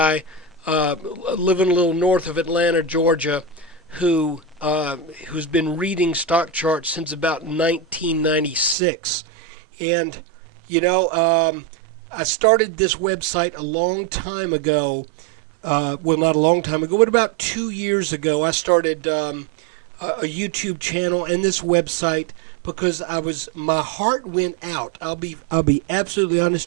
living a little north of Atlanta, Georgia, who's been reading stock charts since about 1996. And, I started this website a long time ago. Well, not a long time ago, but about 2 years ago, I started a YouTube channel and this website because my heart went out. I'll be absolutely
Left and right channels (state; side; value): drops out; left; at 8.8 s